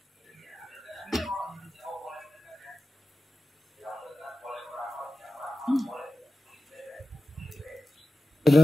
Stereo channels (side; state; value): both; normal; correlation 0.94